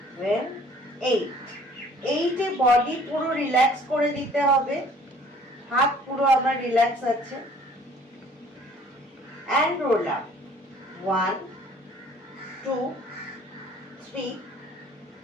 8। 8-এ বডি পুরো রিল্যাক্স করে দিতে হবে, হাত পুরো আমার রিল্যাক্স আছে। And roll up 1, 2, 3,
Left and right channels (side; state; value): both; normal; correlation 0.55